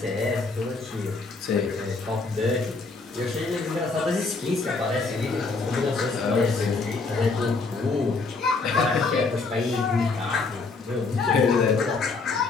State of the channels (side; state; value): right; quieter; 4.0 dB